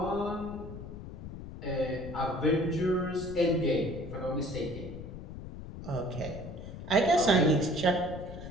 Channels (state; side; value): noise; left; rumble, 11 dB below the sound